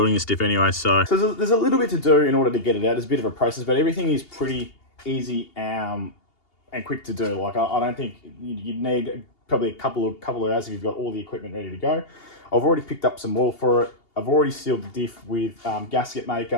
this diff anyway. So there's a little bit to do in order to get it out. There's a bit of a process, but everything is pretty easy and quick to do. Like I don't think you'd need probably a couple of hours if you've got all the equipment ready to go. I've already picked up some oil for it. I've already sealed the diff with gasket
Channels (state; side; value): late; right; 2.8 ms